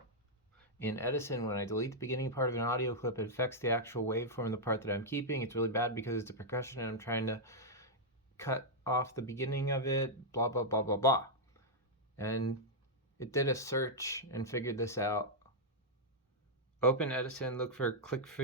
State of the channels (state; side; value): normal; both; correlation -0.05